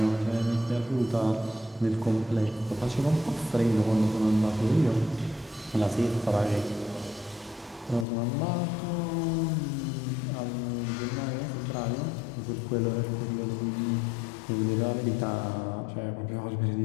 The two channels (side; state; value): right; drops out; at 8.1 s